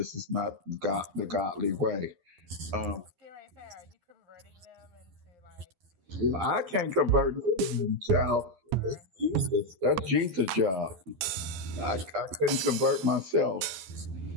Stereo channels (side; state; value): left; late; 11 ms